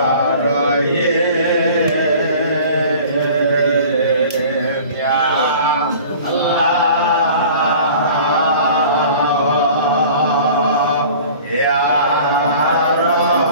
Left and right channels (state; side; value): inverted; both; correlation -0.45